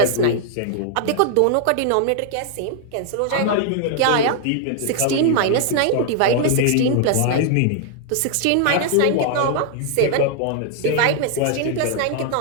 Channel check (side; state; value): both; different; correlation 0.00